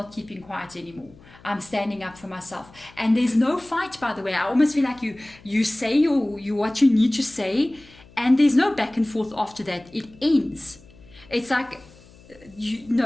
keeping quiet anymore. I'm standing up for myself. And there's no fight, by the way. I almost feel like you say you what you need to say, and there's no back and forth after that. It ends. It's like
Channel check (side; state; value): left; noise; hum, 24 dB below the sound